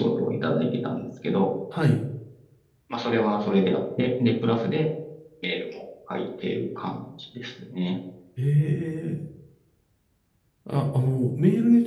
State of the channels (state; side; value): identical; both; correlation 1.00